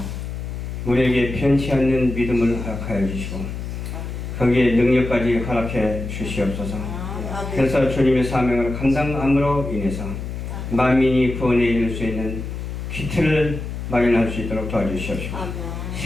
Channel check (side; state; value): left; noise; hum, 6 dB below the sound